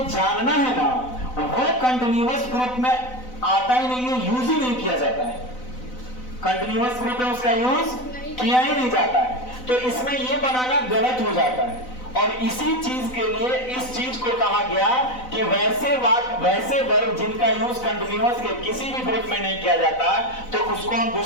जानना है ना, वो कंटिन्यूअस ग्रुप में आता ही नहीं है, यूज ही नहीं किया जाता है। कंटिन्यूअस ग्रुप में उसका यूज किया ही नहीं जाता है। तो इसमें ये बनाना गलत हो जाता है। और इसी चीज के लिए इस चीज को कहा गया कि वैसे वाक्य, वैसे वर्ब जिनका यूज कंटिन्यूअस के किसी भी ग्रुप में नहीं किया जाता, तो उसको हम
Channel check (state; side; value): late; right; 4.0 ms